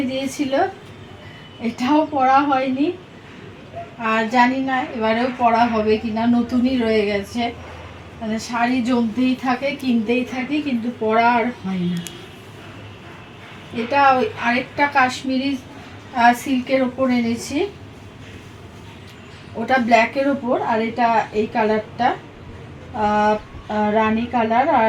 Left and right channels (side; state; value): both; identical; correlation 1.00